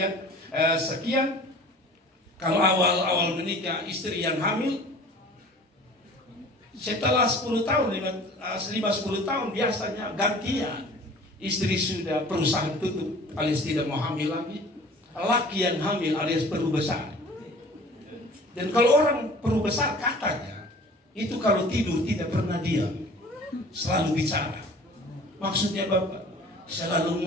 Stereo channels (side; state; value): both; normal; correlation 0.46